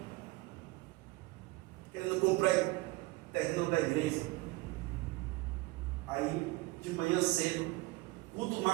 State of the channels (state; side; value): quieter; left; 22.1 dB